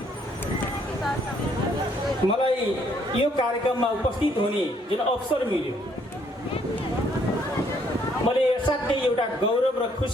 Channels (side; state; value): both; normal; correlation 0.67